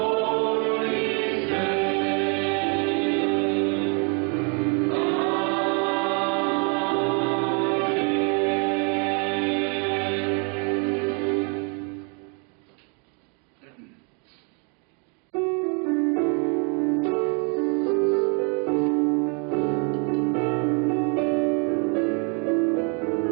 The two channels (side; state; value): left; quieter; 36.8 dB